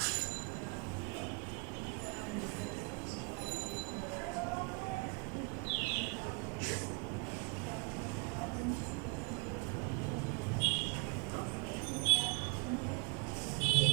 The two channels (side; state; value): left; quieter; 32.1 dB